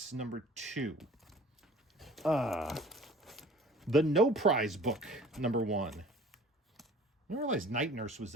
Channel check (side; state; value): both; normal; correlation 0.48